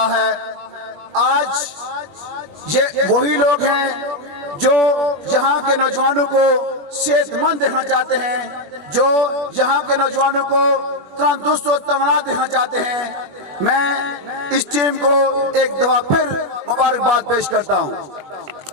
ہے. آج یہ وہی لوگ ہیں جو یہاں کے نوجوانوں کو صحت مند دیکھنا چاہتے ہیں, جو یہاں کے نوجوانوں کو تندرست و توانا دیکھنا چاہتے ہیں. میں اس ٹیم کو ایک دفعہ پھر مبارکباد پیش کرتا ہوں.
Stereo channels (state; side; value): late; left; 21 ms